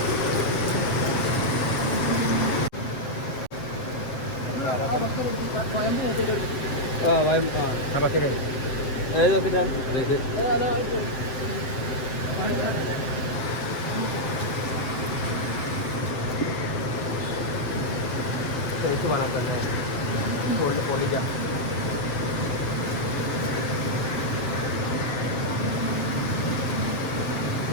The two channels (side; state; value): right; late; 7.7 ms